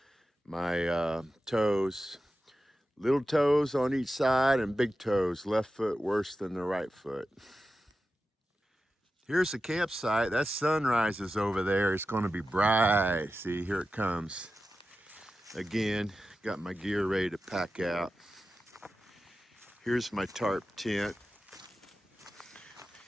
my toes, little toes on each side and big toes. Left foot worse than the right foot. Here's the campsite. That sunrise is over there. It's gonna be bright. See, here it comes. Again, got my gear ready to pack out. Here's my tarp tent.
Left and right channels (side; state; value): both; normal; correlation 0.92